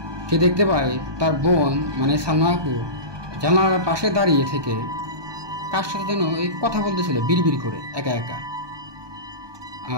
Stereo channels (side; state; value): left; late; 1.2 ms